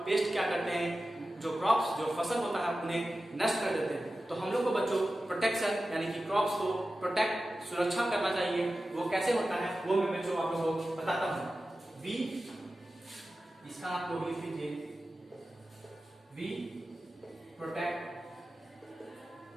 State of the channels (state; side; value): normal; both; correlation 0.94